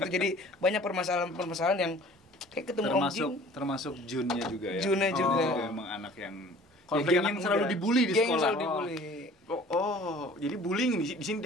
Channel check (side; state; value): both; normal; correlation 0.48